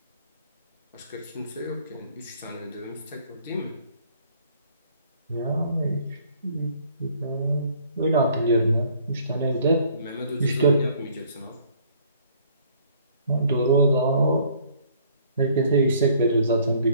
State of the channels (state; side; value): inverted; both; correlation -0.59